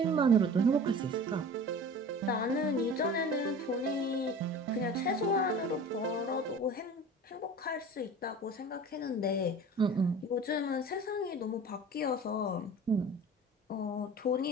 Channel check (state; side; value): normal; both; correlation 0.39